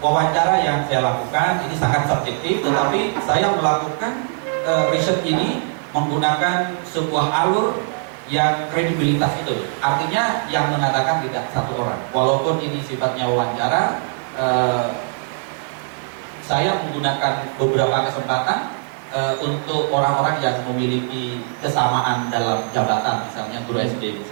yang saya lakukan ini sangat subjektif, tetapi saya melakukan riset ini menggunakan sebuah alur yang kredibilitas itu. Artinya yang mengatakan tidak satu orang. Walaupun ini sifatnya wawancara, saya menggunakan beberapa kesempatan untuk orang-orang yang memiliki kesamaan dalam jabatan, misalnya guru SD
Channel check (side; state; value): left; silent; digital silence